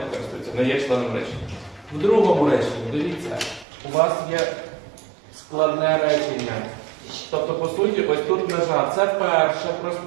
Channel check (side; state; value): left; drops out; at 3.7 s